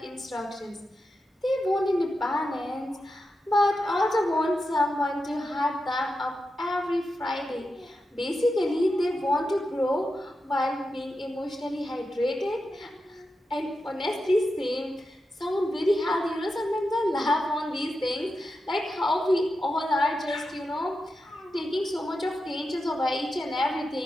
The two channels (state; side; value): normal; both; correlation 0.89